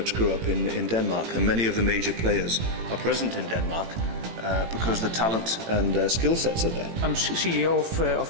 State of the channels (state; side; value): late; left; 18 ms